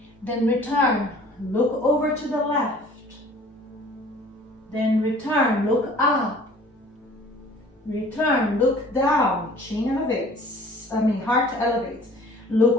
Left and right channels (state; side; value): normal; both; correlation 0.50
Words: Then return. Look over to the left. Then return, look up. Return, look down. Chin elevates. Heart elevates.